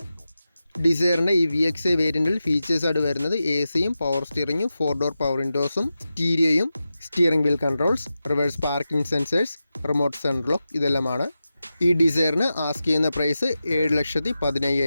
ഡിസയറിൻ്റെ ഈ VXi വേരിയൻറ്റിൽ ഫീച്ചേഴ്സായിട്ട് വരുന്നത് AC-യും പവർ സ്റ്റിയറിങ്ങും 4 ഡോർ പവർ വിൻഡോസും സ്റ്റീരിയോയും steering wheel controls, reverse parking sensors, remote central lock ഇതെല്ലാമാണ്. ഈ ഡിസയറിന് ആസ്ക് ചെയ്യുന്ന പ്രൈസ്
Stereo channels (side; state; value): both; inverted; correlation -0.92